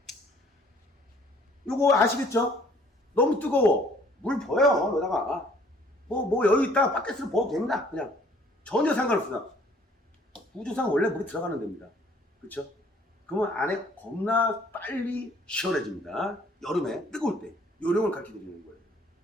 요거 아시겠죠? 너무 뜨거워 물 부어요. 여기다가 뭐 여유 있다 바켓으로 부어도 됩니다. 그냥 전혀 상관없습니다. 우주상 원래 물이 들어가는 데입니다. 그렇죠? 그러면 안에 겁나 빨리 시원해집니다. 여름에 뜨거울 때 요령을 가르쳐 드리는 거예요.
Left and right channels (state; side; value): normal; both; correlation 0.58